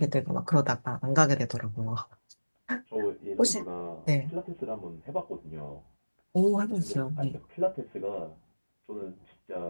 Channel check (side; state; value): both; inverted; correlation -1.00